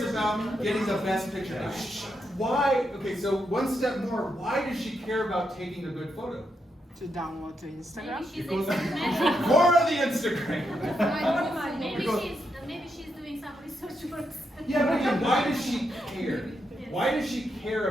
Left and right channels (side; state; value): both; normal; correlation 0.82